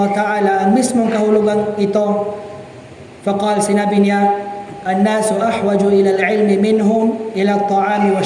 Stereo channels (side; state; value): both; identical; correlation 1.00